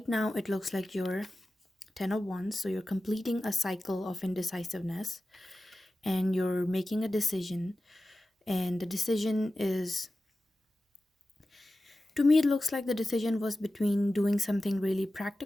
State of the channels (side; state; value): both; normal; correlation 0.94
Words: now it looks like you're 10 of Wands, so you're completing a cycle of indecisiveness, and you're making a decision. And the decision is, to me, it looks like the decision was between doing something really